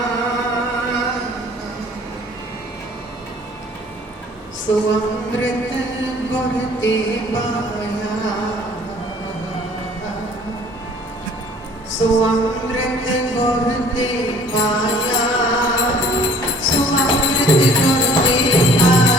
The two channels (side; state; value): both; normal; correlation 0.53